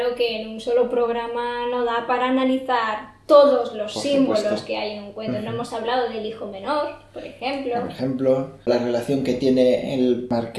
que en un solo programa no da para analizar todos los Por símbolos supuesto. que hay en un cuento. No hemos hablado del hijo menor, por ejemplo. Por ejemplo, la relación que tiene el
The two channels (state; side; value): identical; both; correlation 1.00